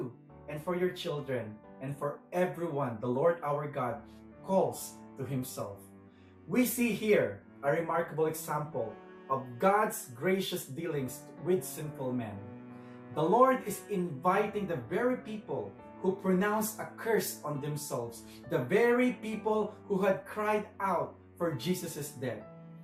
and for your children and for everyone the Lord our God calls to himself." We see here a remarkable example of God's gracious dealings with sinful men. The Lord is inviting the very people who pronounced a curse on themselves, the very people who had cried out for Jesus' death.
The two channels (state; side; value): identical; both; correlation 1.00